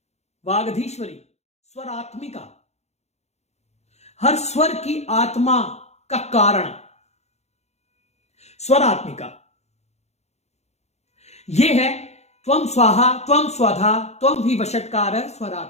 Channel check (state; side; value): late; right; 0.32 ms